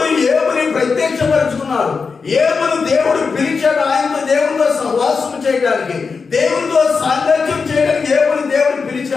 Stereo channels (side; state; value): right; quieter; 5.0 dB